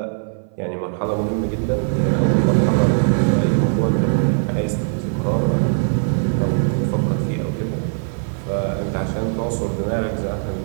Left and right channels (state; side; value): silent; left; 59 dB below the other